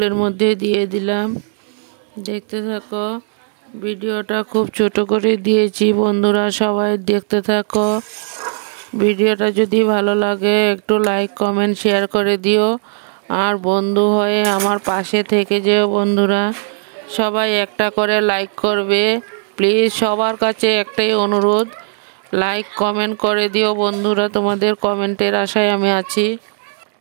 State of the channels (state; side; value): silent; left; digital silence